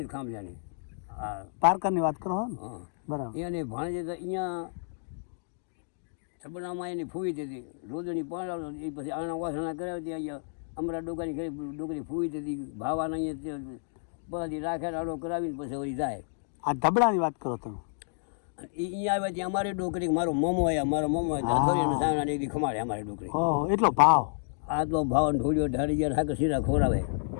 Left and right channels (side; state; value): right; silent; digital silence